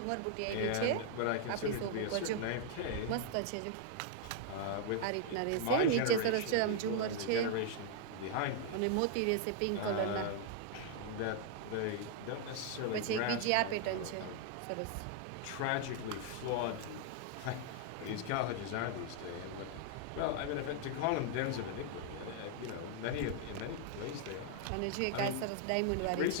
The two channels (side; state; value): both; different; correlation -0.01